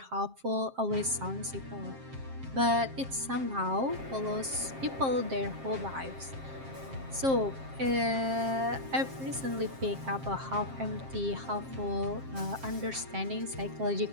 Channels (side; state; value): left; late; 7.5 ms